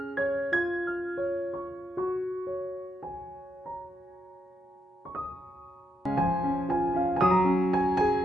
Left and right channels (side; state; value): both; normal; correlation 0.82